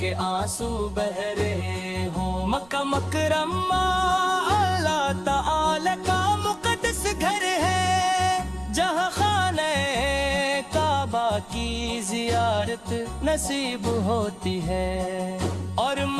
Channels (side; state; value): right; noise; rumble, 26 dB below the sound